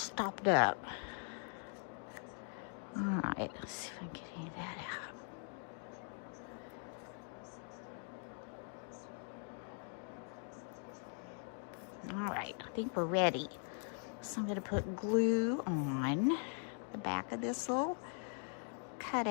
up. All right, let's see if I can get any of that out. All right, I think we're ready. So I'm going to put glue on the back of this little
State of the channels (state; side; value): silent; right; 50 dB below the other